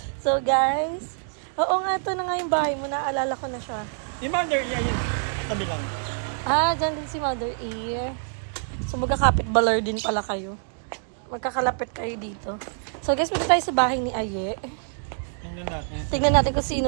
So guys, oo nga, ito na nga yung bahay mo. Naalala ko na siya. Si Mother, yun. Tabi lang. Ah, dyan din si Mother E. So magkakapit baler din pala kayo. Magkakalapit kayo dito. So guys, punta tayo sa bahay ni Aye. Tingnan natin. Tingnan natin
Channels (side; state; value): left; silent; digital silence